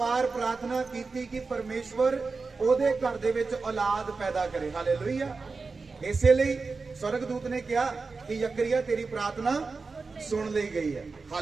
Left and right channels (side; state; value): left; quieter; 4.3 dB